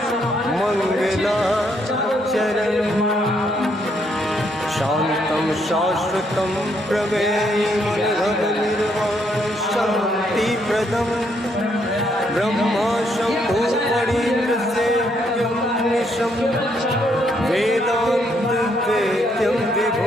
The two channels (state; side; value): normal; both; correlation 0.73